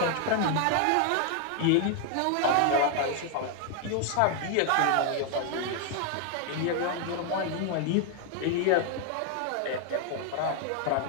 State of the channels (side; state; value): both; different; correlation 0.00